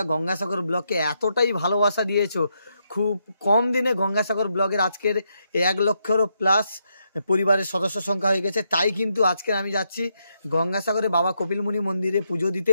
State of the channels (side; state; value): both; inverted; correlation -0.80